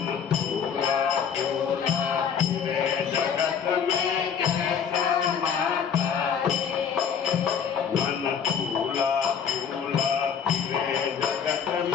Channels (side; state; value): right; quieter; 7.4 dB